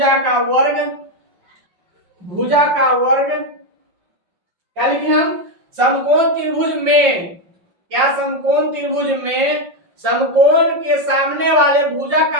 का वर्ग क्या लिखे हम, समकोण त्रिभुज में, क्या समकोण त्रिभुज में समकोण के सामने वाले भुजा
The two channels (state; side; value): late; left; 5.7 ms